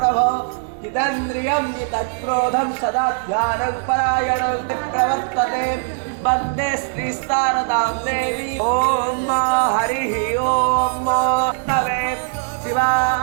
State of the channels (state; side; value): silent; left; digital silence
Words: जितेन्द्रियं जितक्रोधं सदा ध्यानं परायणं प्रवर्तते वन्दे श्रीशारदां देवी ॐ हरिः ॐ तवे